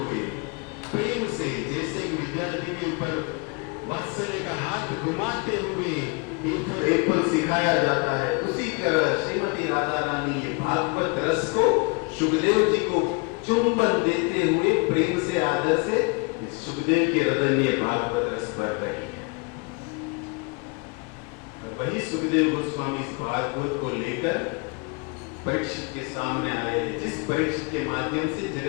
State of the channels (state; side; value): quieter; right; 31.3 dB